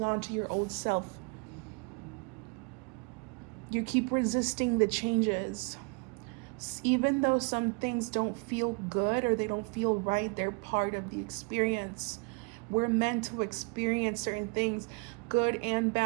on to your old self. You keep resisting the changes. Even though some things don't feel good or they don't feel right, they're part of the experience. We're meant to experience certain things, good and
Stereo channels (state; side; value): quieter; left; 33.8 dB